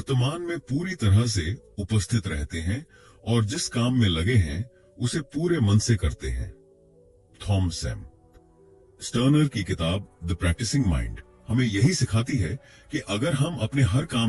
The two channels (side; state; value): both; identical; correlation 1.00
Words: में पूरी तरह से उपस्थित रहते हैं और जिस काम में लगे हैं उसे पूरे मन से करते हैं। थॉमस एम स्टर्नर की किताब द प्रैक्टिसिंग माइंड हमें यही सिखाती है कि अगर हम अपने हर